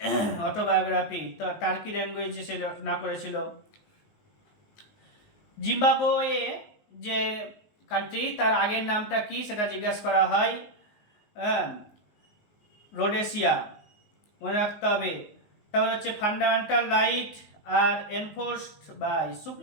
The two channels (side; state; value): right; late; 19 ms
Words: autobiography? তো টার্কি ল্যাঙ্গুয়েজে সে রচনা করেছিল। জিম্বাবুয়ে যে কান্ট্রি, তার আগের নামটা কি সেটা জিজ্ঞাসা করা হয়। রোডেশিয়া, মনে রাখতে হবে। তারপরে হচ্ছে fundamental right are enforced by